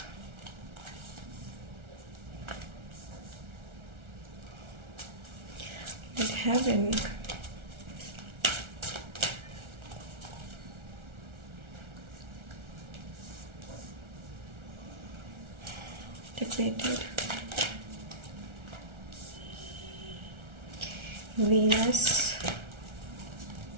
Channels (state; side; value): late; left; 1.4 ms